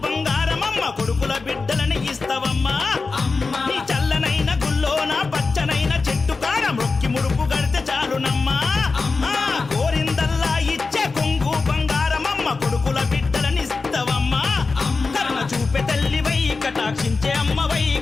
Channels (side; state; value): right; quieter; 4.1 dB